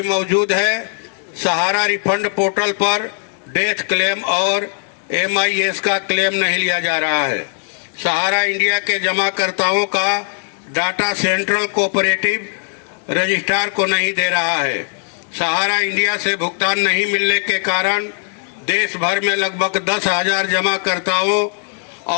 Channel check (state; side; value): silent; right; 62 dB below the other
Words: मौजूद है। सहारा रिफंड पोर्टल पर डेथ क्लेम और MIS का क्लेम नहीं लिया जा रहा है। सहारा इंडिया के जमाकर्ताओं का डाटा सेंट्रल कोऑपरेटिव रजिस्ट्रार को नहीं दे रहा है। सहारा इंडिया से भुगतान नहीं मिलने के कारण देश भर में लगभग 10,000 जमाकर्ताओं